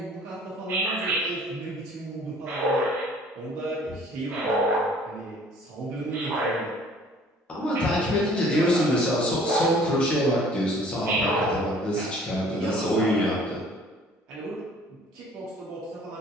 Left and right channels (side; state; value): both; normal; correlation 0.53